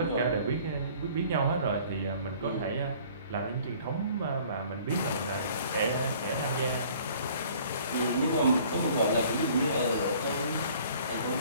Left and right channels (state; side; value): inverted; both; correlation -0.53